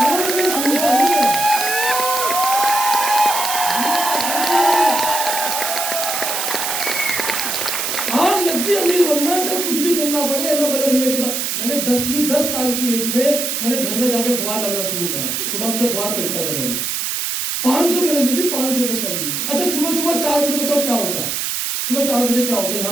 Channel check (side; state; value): right; noise; hiss, 1 dB below the sound